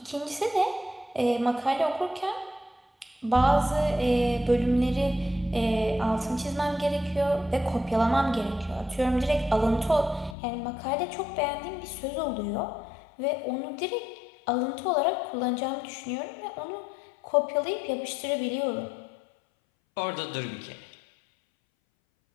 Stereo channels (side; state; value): right; drops out; at 10.4 s